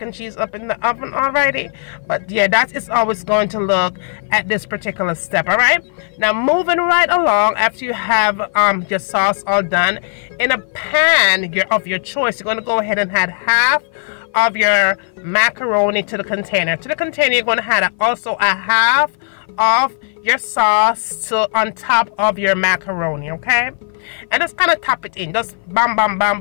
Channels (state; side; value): silent; right; 56 dB below the other